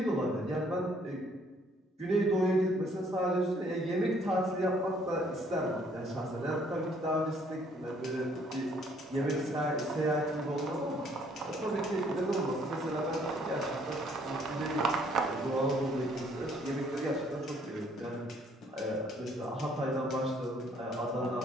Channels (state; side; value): normal; both; correlation 0.63